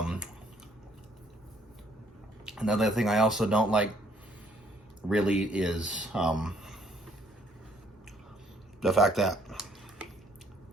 Another thing I also don't like really is the fact that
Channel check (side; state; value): both; normal; correlation 0.65